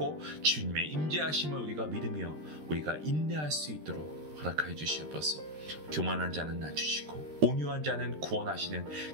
주님의 임재하심을 우리가 믿으며 우리가 인내할 수 있도록 허락하여 주시옵소서. 교만한 자는 낮추시고 온유한 자는 구원하시는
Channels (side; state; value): left; late; 13 ms